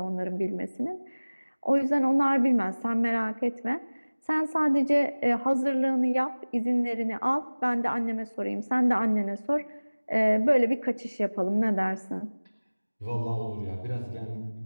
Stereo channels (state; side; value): inverted; both; correlation -1.00